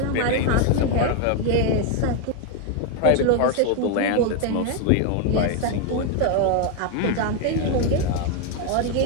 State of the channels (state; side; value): different; both; correlation 0.01